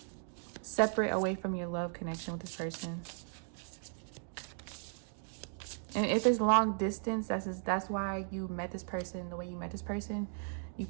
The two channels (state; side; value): silent; left; 53 dB below the other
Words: Separate away from your love connection with this person. And if it's long distance, that's why you met this person the way you met this person. You